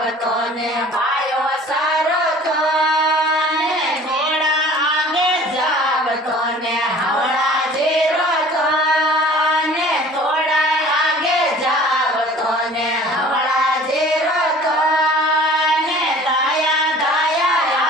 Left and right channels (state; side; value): normal; both; correlation 0.47